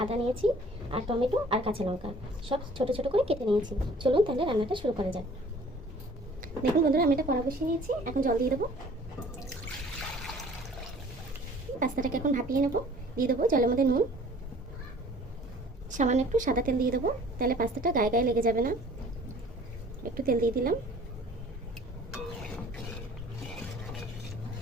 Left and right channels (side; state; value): both; normal; correlation 0.51